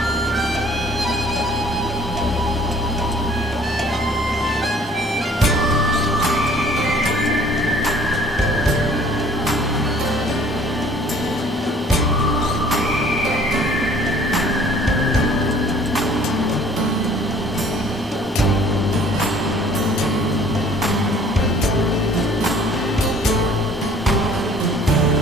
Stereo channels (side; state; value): both; normal; correlation 0.54